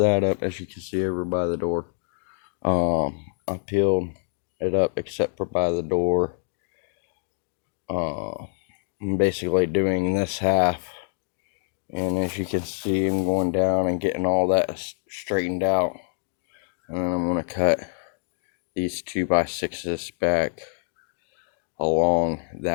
up, as you can see over by the door. I peeled it up except for by the door. I'm basically doing this half, and as you can see, I'm going down and getting all that straightened out, and then I'm going to cut these 2x6s back along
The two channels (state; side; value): silent; right; digital silence